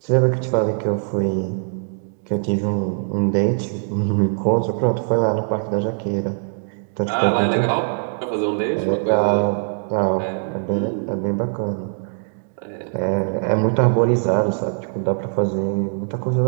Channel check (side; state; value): left; silent; digital silence